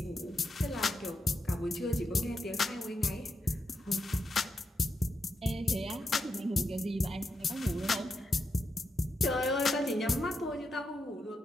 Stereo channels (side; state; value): both; normal; correlation 0.84